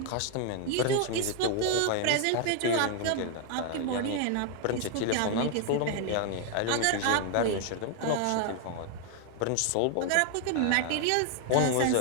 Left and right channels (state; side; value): different; both; correlation 0.00